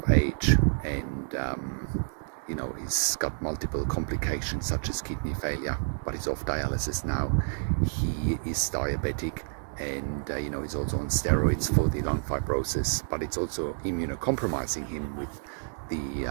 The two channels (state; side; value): silent; left; digital silence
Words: age, and he's got multiple complications such as kidney failure, but he's off dialysis now. He is diabetic, and he's also on steroids for the lung fibrosis, but it's also immunocompromising him with the